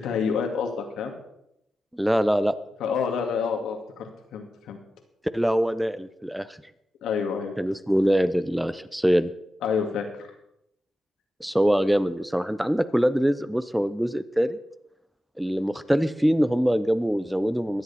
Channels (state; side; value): normal; both; correlation 0.93